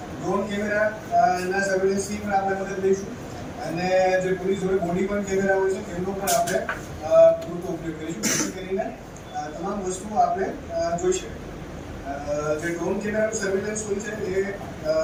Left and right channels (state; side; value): identical; both; correlation 1.00